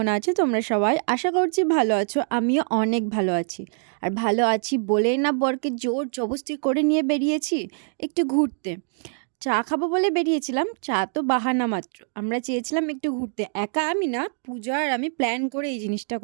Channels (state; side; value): silent; left; 62 dB below the other